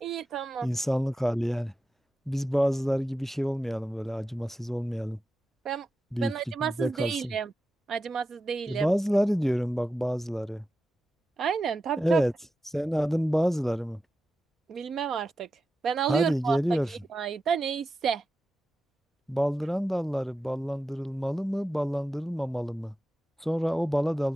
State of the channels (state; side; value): normal; both; correlation 0.91